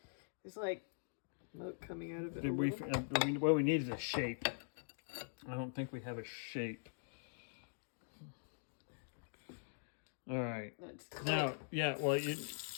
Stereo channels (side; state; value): right; silent; digital silence